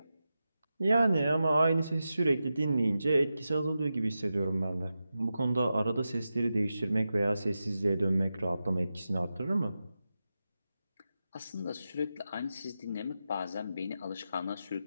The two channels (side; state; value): both; inverted; correlation -0.91